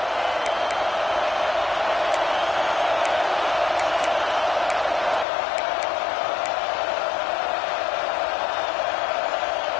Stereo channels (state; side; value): drops out; right; at 5.2 s